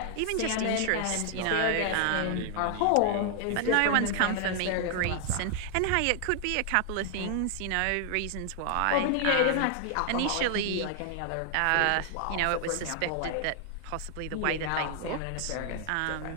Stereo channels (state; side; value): different; both; correlation 0.00